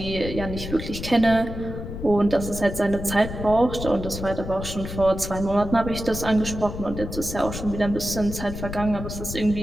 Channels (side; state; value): left; noise; rumble, 8 dB below the sound